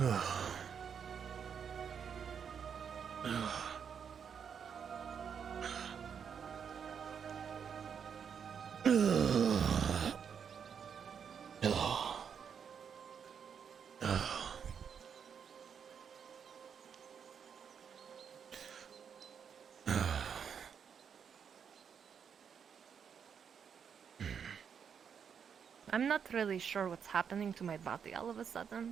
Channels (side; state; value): left; quieter; 7.2 dB